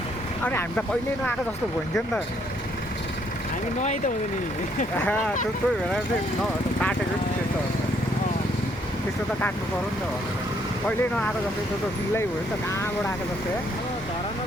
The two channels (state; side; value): normal; both; correlation 0.69